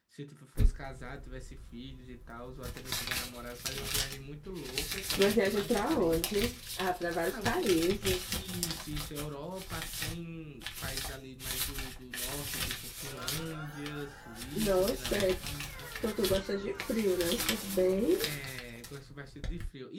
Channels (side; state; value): both; identical; correlation 1.00